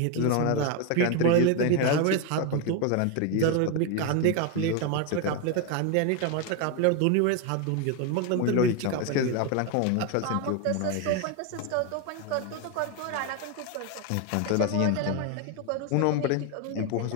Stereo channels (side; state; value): both; different; correlation 0.01